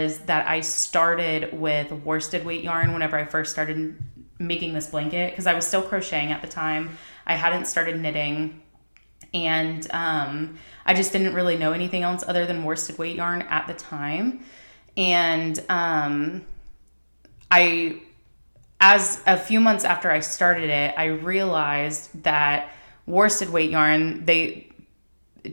that I started with worsted weight yarn whenever I first started making this blanket, because I was still crocheting at the time. I hadn't started knitting, and I just didn't really know anything else other than worsted weight yarn at the time. And as a few months after I started it, I realized that worsted weight yarn,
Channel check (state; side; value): inverted; both; correlation -1.00